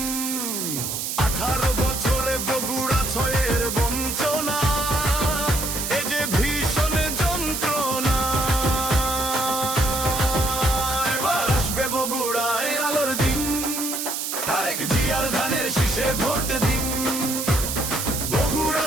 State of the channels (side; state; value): right; noise; hiss, 3 dB below the sound